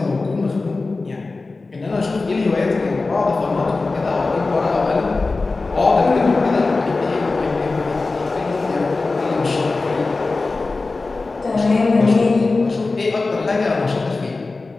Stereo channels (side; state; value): right; quieter; 3.6 dB